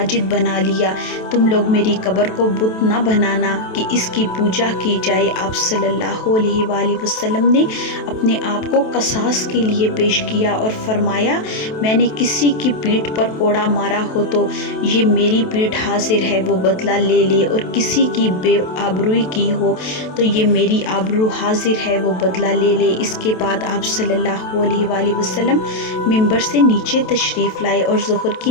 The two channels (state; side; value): late; right; 27 ms